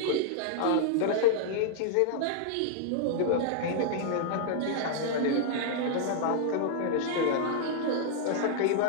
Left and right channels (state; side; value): different; both; correlation -0.01